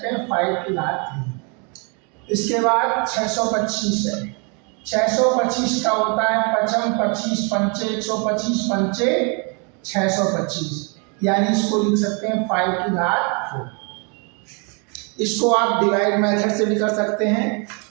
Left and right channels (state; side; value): quieter; left; 34.6 dB